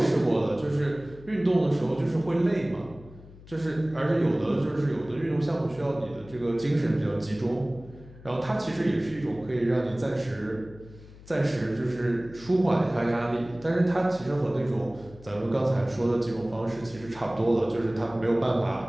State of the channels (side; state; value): left; noise; hum, 20 dB below the sound